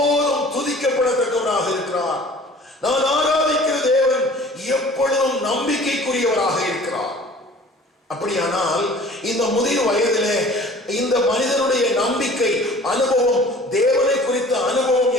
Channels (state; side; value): normal; both; correlation 0.48